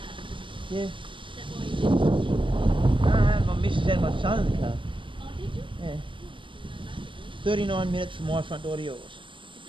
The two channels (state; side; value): late; left; 0.24 ms